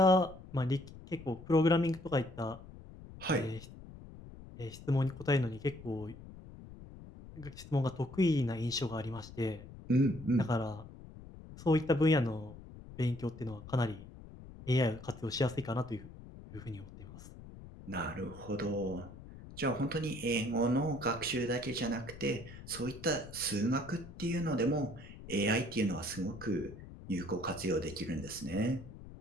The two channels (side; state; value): left; noise; rumble, 16 dB below the sound